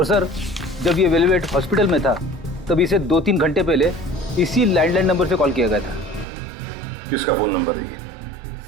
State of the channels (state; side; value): drops out; left; at 6.2 s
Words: सर, जब ये वेलवेट हॉस्पिटल में था तब इसे 2-3 घंटे पहले इसी लैंडलाइन नंबर से कॉल किया गया था। किसका फोन नंबर है ये?